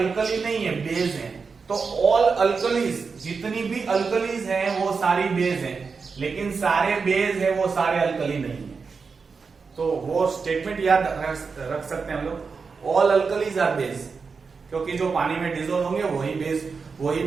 नहीं है, बेस है। तो ऑल अल्कलीज, जितनी भी अल्कलीज हैं वो सारी बेस हैं, लेकिन सारे बेस है वो सारे अल्कली नहीं है। तो वो स्टेटमेंट याद रख सकते हैं हम लोग, ऑल अल्कलीज आर बेस, क्योंकि जो पानी में डिसॉल्व होंगे वही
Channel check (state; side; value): quieter; left; 5.1 dB